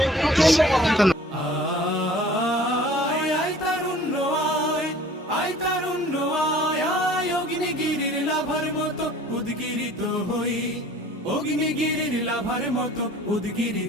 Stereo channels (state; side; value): normal; both; correlation 0.49